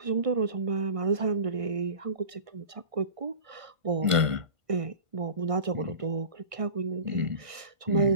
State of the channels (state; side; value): late; left; 1.5 ms